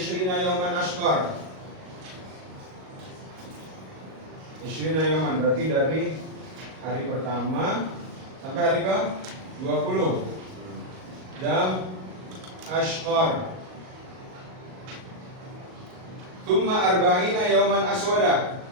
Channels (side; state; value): left; late; 38 ms